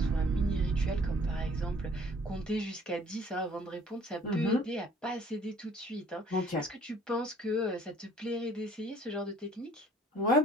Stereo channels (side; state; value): both; normal; correlation 0.55